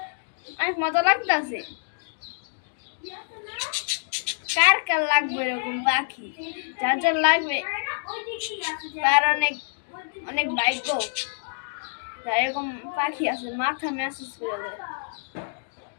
অনেক মজা লাগতেছে। কার কার লাগবে এরকম পাখি? যার যার লাগবে তার অনেক অনেক ভাগ্য, যার এরকম পাখি আছে মাথা ম্যাসেজ করে দেয়।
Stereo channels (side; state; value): right; silent; digital silence